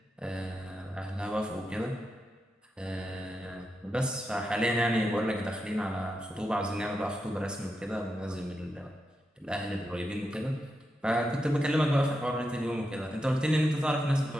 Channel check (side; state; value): both; normal; correlation 0.86